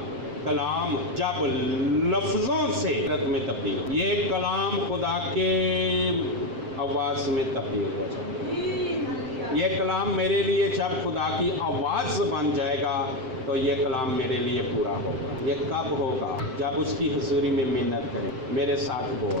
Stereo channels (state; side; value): late; left; 7.7 ms